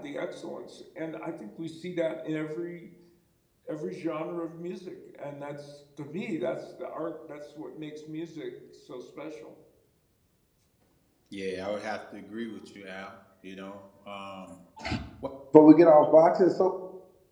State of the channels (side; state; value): both; identical; correlation 1.00